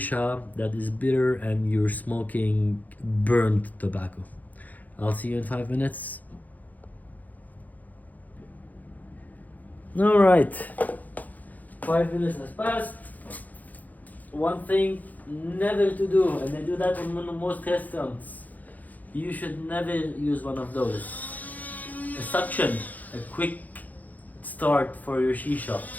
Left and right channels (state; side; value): late; right; 0.080 ms